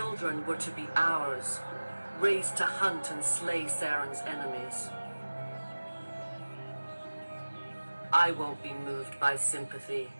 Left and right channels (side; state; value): both; inverted; correlation -1.00